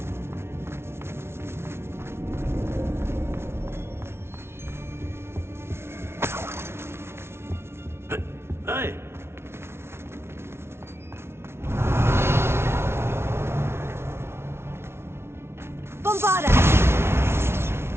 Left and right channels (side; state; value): left; late; 0.12 ms